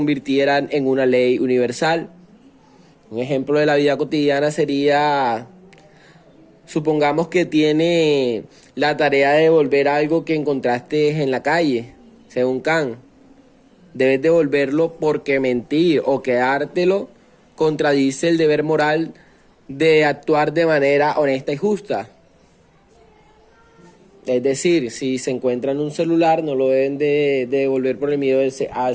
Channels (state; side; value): identical; both; correlation 1.00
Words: en una ley universal. Un ejemplo de la vida cotidiana sería, supongamos que tiene la tarea de devolver algo que encontraste en la calle, según Kant. Debes devolverlo porque mentir o quedártelo contradice el deber moral de actuar de manera honesta y justa. Es decir, si se encuentra en un celular, no lo deben de devolver por el miedo